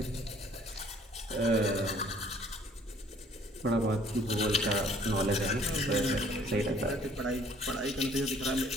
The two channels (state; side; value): normal; both; correlation 0.57